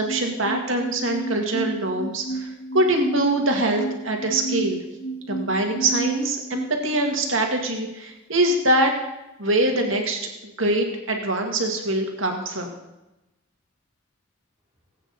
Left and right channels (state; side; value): normal; both; correlation 0.02